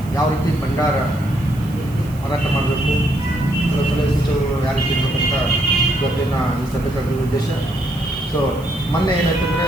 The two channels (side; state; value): right; noise; hiss, 22 dB below the sound